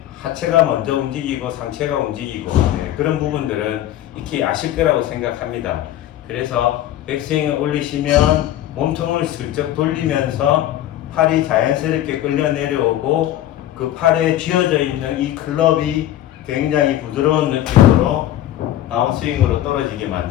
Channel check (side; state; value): right; quieter; 12.8 dB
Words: 하체가 먼저 움직이고 상체가 움직이고 그런 부분들은 익히 아실 거라고 생각합니다. 그래서 백스윙을 올리시면 몸통을 슬쩍 돌리면서 팔이 자연스럽게 끌려 내려오고 그 팔에 쥐어져 있는 이 클럽이 굉장히 부드러운 느낌으로 다운스윙으로 떨어지게